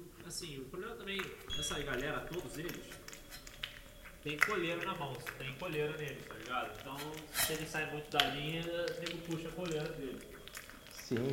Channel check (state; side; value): identical; both; correlation 1.00